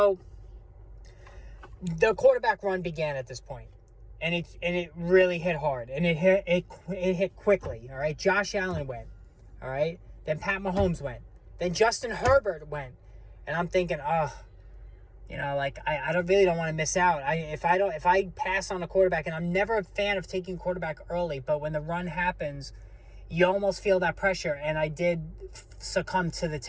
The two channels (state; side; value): identical; both; correlation 1.00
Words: the quarterback run began at this point, and it really hit hard, and it hit quickly. All right, Josh Allen went. All right, then Pat Mahomes went. Then Justin Herbert went, and I'm thinking, I really don't want to miss out. If I pass on a quarterback, and I'm never a fan of taking quarterback early, but when the run happens, you almost feel that pressure, and I did succumb to the